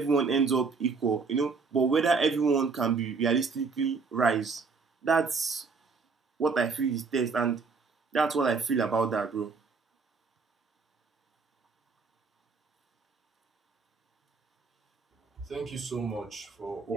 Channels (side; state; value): left; quieter; 4.8 dB